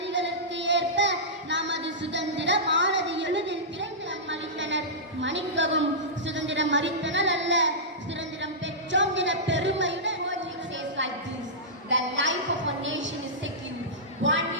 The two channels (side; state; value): both; normal; correlation -0.15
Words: ஏற்ப நமது சுதந்திரமானது எளிதில் பிறந்து மறித்தனர். மன்னிக்கவும், சுதந்திரம் மறித்தனர் அல்ல, சுதந்திரம் பெற்றோம் என பெருமையுடன். The life of a nation is secure